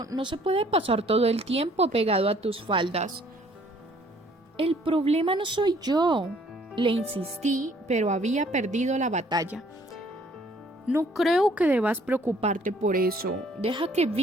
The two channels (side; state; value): both; normal; correlation 0.60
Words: no se puede pasar todo el tiempo pegado a tus faldas. El problema no soy yo, le insistí, pero había perdido la batalla. No creo que debas preocuparte por eso. Deja que